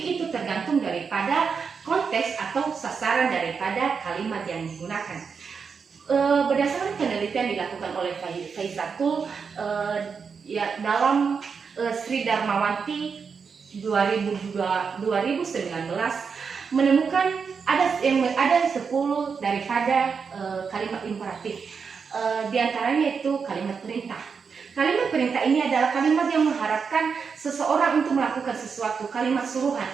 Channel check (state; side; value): quieter; left; 5.8 dB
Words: itu tergantung daripada konteks atau sasaran daripada kalimat yang digunakan. Berdasarkan penelitian dilakukan oleh Faizatul dalam Sri Darmawanti 2019 menemukan ada 10 daripada kalimat imperatif. Di antaranya itu kalimat perintah. Kalimat perintah ini adalah kalimat yang mengharapkan seseorang untuk melakukan sesuatu. Kalimat suruhan.